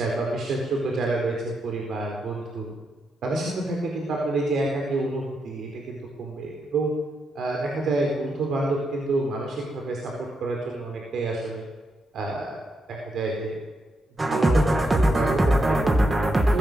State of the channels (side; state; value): both; normal; correlation 0.82